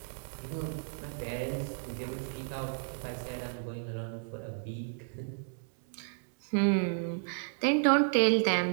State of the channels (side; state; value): left; silent; digital silence